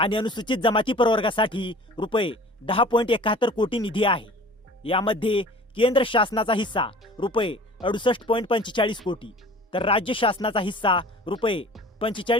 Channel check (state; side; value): normal; both; correlation 0.45